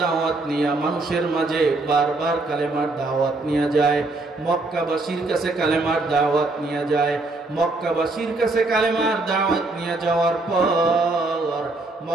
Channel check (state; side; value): quieter; left; 3.1 dB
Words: দাওয়াত নিয়া মানুষের মাঝে বারবার কালেমার দাওয়াত নিয়ে যায়। মক্কাবাসীর কাছে কালেমার দাওয়াত নিয়ে যায়। মক্কাবাসীর কাছে কালেমার দাওয়াত নিয়ে যাওয়ার পর